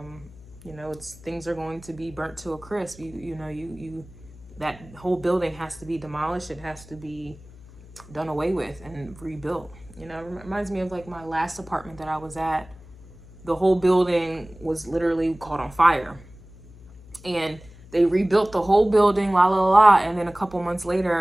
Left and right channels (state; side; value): noise; left; hum, 21 dB below the sound